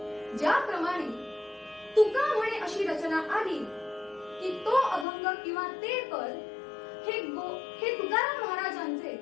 ज्याप्रमाणे तुका म्हणे अशी रचना आली की तो अभंग किंवा ते पद हे तुकाराम महाराजांचे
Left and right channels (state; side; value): drops out; right; at 5.1 s